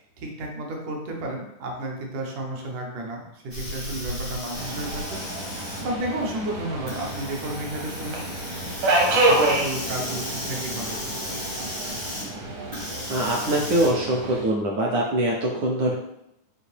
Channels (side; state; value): left; late; 9.5 ms